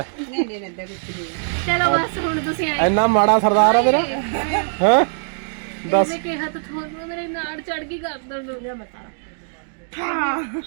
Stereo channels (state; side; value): silent; left; digital silence